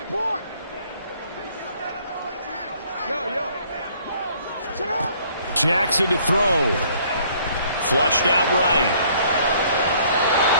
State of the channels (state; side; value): inverted; both; correlation -0.61